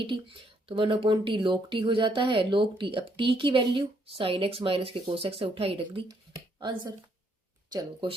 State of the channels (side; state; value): both; normal; correlation 0.71